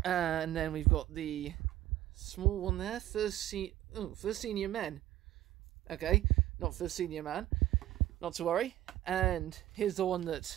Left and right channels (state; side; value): quieter; left; 13.8 dB